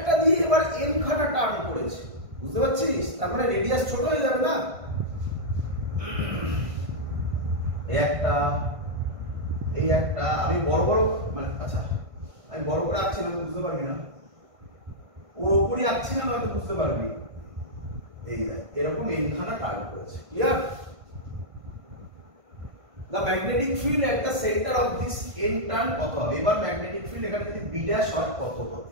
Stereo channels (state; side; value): late; left; 1.5 ms